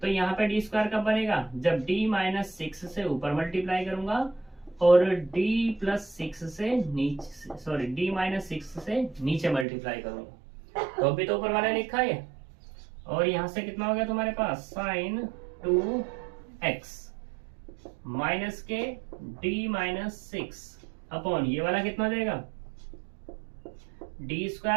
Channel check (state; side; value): drops out; left; at 9.7 s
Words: तो यहाँ पे डी स्क्वायर कब बनेगा, जब डी माइनस 6 से ऊपर मल्टीप्लाई करूंगा और डी प्लस 6 से नीचे, सॉरी डी माइनस 6 से नीचे मल्टीप्लाई करूंगा। तो अभी तो ऊपर वाला लिखा है और यहां से कितना हो गया तुम्हारे पास साइन 2x माइनस के डी माइनस 6 अपॉन ये वाला कितना देगा डी